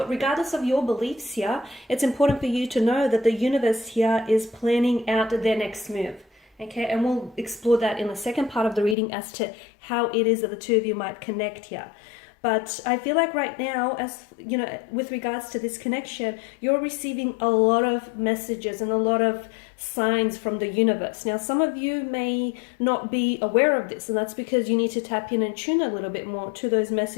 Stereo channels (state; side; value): drops out; right; at 9.0 s